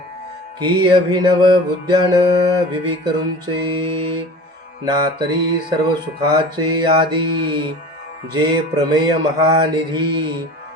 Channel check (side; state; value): both; normal; correlation 0.39